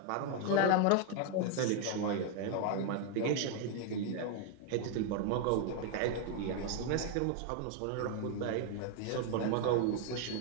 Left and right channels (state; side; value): different; both; correlation 0.01